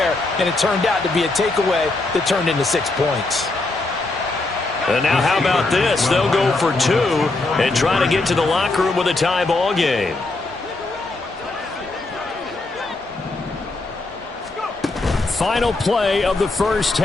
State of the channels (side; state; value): right; quieter; 3.2 dB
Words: and it turned out to be a takeaway that turned into 6 points. And now how about this? They'll go for 2 and try to get to the locker room with a tie ball game. Final play of the first